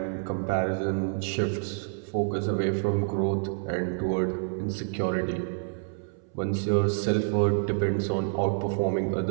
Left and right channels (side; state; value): left; silent; 59 dB below the other